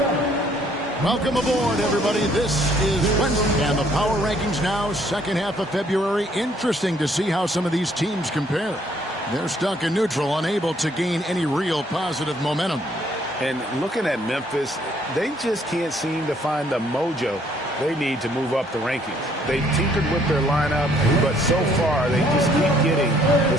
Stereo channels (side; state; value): both; normal; correlation 0.65